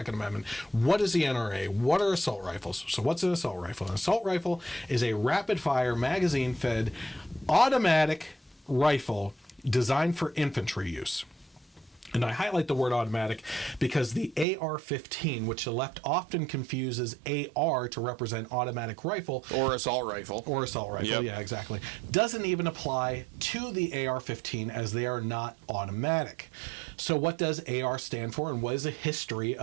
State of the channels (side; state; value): left; drops out; at 14.5 s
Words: Amendment? What is the NRA? What are assault rifles? So what's an assault rifle? An assault rifle is a rapid-fire, magazine-fed, automatic rifle designed for infantry use. And I highlight the word automatic because the AR-15, which the left often confuses AR to represent automatic rifle. Or assault rifle. Yeah, exactly. Doesn't even apply to the AR-15 as they are not automatic. So what does AR stand for, and what is the history